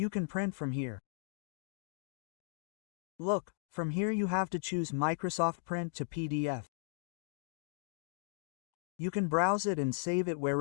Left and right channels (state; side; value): silent; right; digital silence